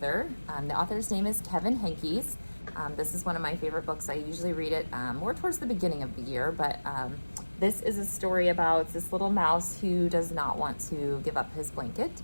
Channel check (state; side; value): inverted; both; correlation -1.00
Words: The author's name is Kevin Henkes. This is one of my favorite books. I usually read it more towards the beginning of the year, but this is a story about this little mouse who does not want to give up his blanket.